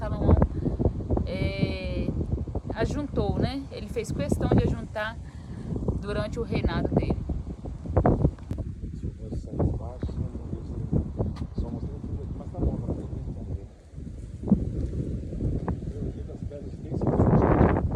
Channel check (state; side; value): identical; both; correlation 1.00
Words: ajuntou, né? Ele fez questão de ajuntar durante o reinado dele. Só mostrei tudo aqui, mas tá bom, pra gente entender. Das pedras bem